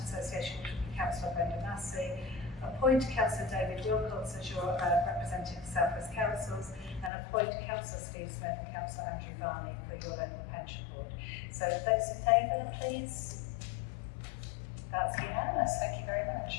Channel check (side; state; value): right; drops out; at 7.1 s